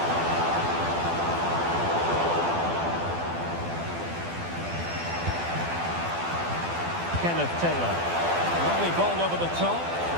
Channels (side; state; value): left; late; 12 ms